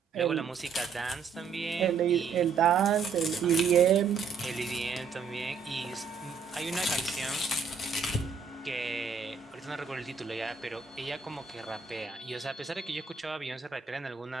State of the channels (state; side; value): quieter; left; 5.7 dB